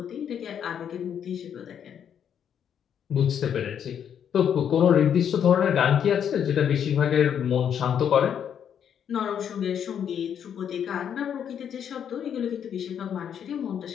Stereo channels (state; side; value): quieter; right; 8.6 dB